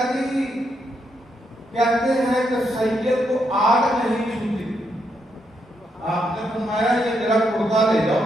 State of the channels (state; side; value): normal; both; correlation 0.79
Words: جی کہتے ہیں کہ سید کو آگ نہیں چھوتی، آپ نے فرمایا یہ میرا کرتا لے